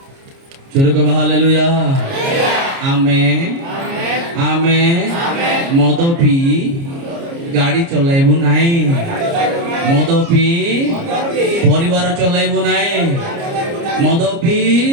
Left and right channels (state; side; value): late; left; 29 ms